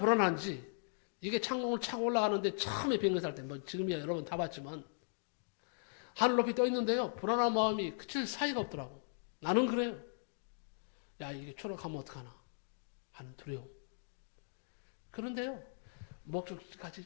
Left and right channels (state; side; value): silent; right; digital silence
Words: 이게 창문을 차고 올라가는데 처음에 비행기 탈 때, 뭐 지금이야 여러분 다 봤지만, 하늘 높이 떠 있는데요. 불안한 마음이 그칠 사이가 없더라고. 나는 그래요. 야, 이게 추락하면 어떡하나 하는 두려움. 그런데요,